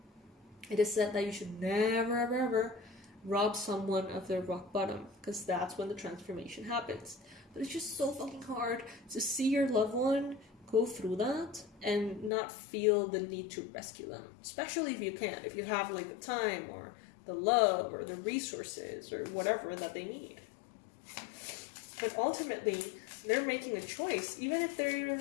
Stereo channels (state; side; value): drops out; right; at 12.3 s